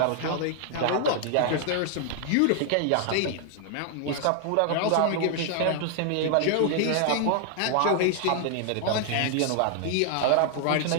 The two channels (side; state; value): both; different; correlation 0.00